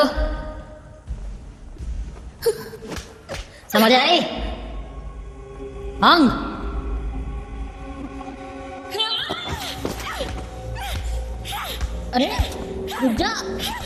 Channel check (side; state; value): both; identical; correlation 1.00